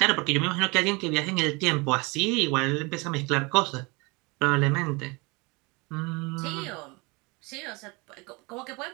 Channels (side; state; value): left; quieter; 27.2 dB